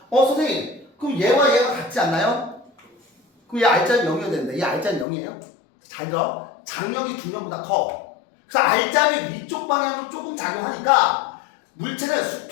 선생님, 그럼 얘와 얘가 같지 않나요? 그럼 얘 R자임 0이어야 되는데 얘 R자임 0이에요? 잘 들어. 장력이 중력보다 커. 그래서 R자임이 위쪽 방향으로 조금 작용하니까 물체는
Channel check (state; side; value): drops out; right; at 5.1 s